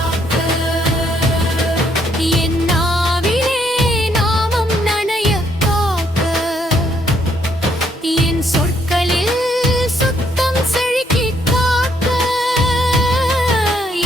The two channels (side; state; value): both; normal; correlation 0.71